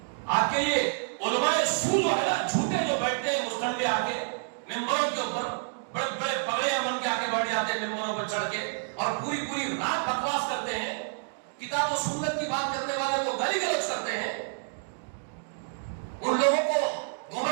آپ کے یہ علماء سو جو ہے نا, جھوٹے جو بیٹھتے ہیں مستنڈے آ کے ممبروں کے اوپر, بڑے بڑے پگڑیاں بن کے آگے بڑھ جاتے ہیں ممبروں پر چڑھ کے, اور پوری رات بکواس کرتے ہیں, کتاب و سنت کی بات کرنے والے کو گالی گلوچ کرتے ہیں, ان لوگوں کو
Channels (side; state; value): left; silent; digital silence